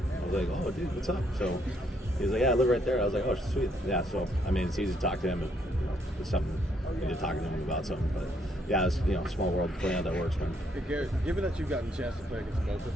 I was like, "Oh dude, what's up?" So he was like, "Yeah, I live right there." I was like, "Oh, sweet." Yeah, so it's easy to talk to him if it's something you need to talk to him about something. But yeah, it's small world, playing how that works, man. Hey Garrett, given that you've gotten a chance to play against both of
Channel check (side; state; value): both; normal; correlation 0.71